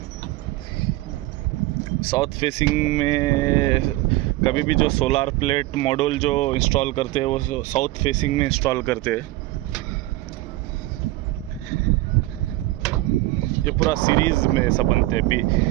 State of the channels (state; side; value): quieter; left; 18.1 dB